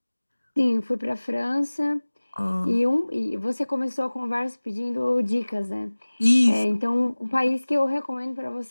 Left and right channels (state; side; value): inverted; both; correlation -1.00